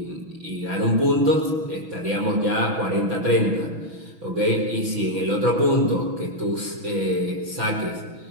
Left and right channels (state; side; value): late; left; 6.2 ms